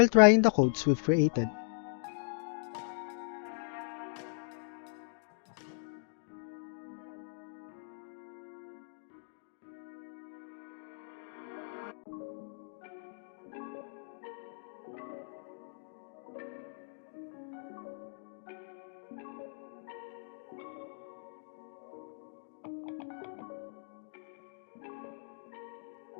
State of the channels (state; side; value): silent; right; digital silence